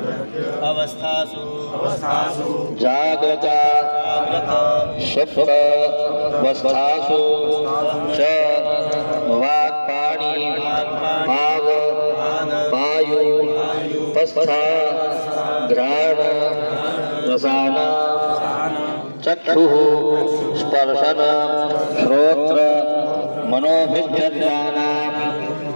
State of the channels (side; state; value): both; inverted; correlation -1.00